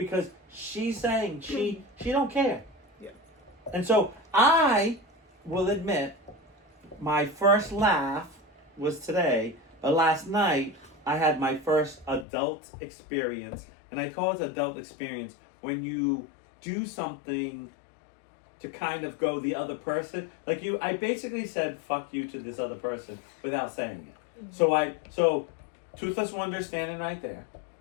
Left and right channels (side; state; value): right; drops out; at 12.2 s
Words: she's saying she don't care. Yeah. And so I will admit, my first laugh was today, but last night I had my first adult experience. And I call it adult experience when you do something to kind of go the other person. Like I basically said fuck you to this other person without saying it. Mm-hmm. So Toothless Wonder standing right there,